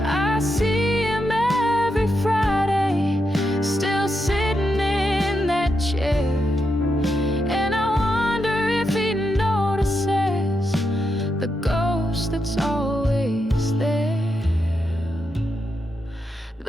I see him every Friday, still sitting in that chair, and I wonder if he notices the ghost that's always there.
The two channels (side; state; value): both; normal; correlation 0.84